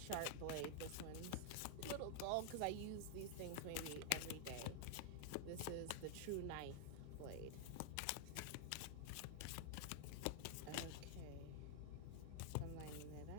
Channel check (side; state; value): both; different; correlation 0.00